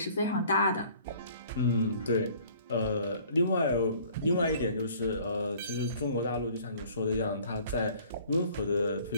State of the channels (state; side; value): inverted; both; correlation -0.54